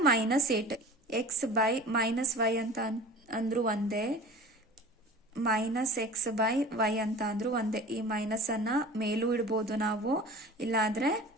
minus 8. X by minus Y ಅಂತ ಅಂದ್ರು ಒಂದೇ, ಮೈನಸ್ ಎಕ್ಸ್ ಬೈ ವೈ ಅಂತ ಅಂದ್ರು ಒಂದೇ. ಈ ಮೈನಸ್ ಅನ್ನ ಮೇಲೂ ಇಡ್ಬೋದು ನಾವು, ಇಲ್ಲಾದ್ರೆ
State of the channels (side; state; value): both; normal; correlation 0.39